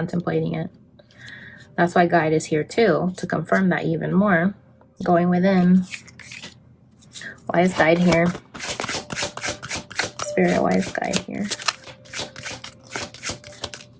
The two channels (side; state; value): both; identical; correlation 1.00